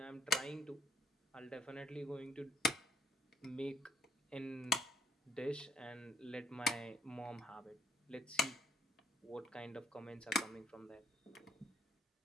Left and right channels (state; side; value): normal; both; correlation 0.64